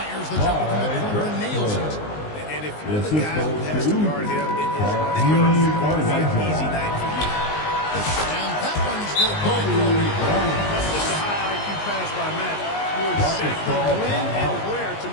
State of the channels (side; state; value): right; late; 19 ms